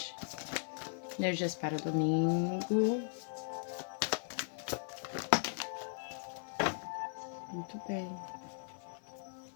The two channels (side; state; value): right; silent; digital silence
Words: Energias para domingo. Muito bem.